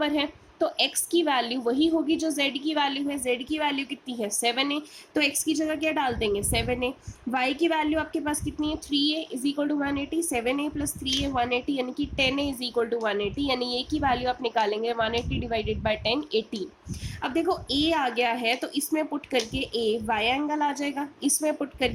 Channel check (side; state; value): both; identical; correlation 1.00